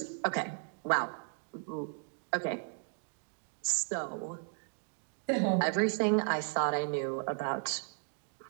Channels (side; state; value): left; silent; 54 dB below the other